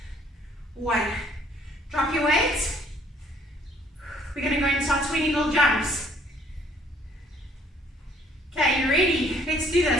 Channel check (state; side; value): normal; both; correlation 0.62